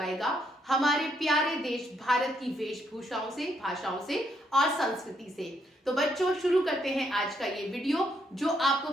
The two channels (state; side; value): normal; both; correlation 0.75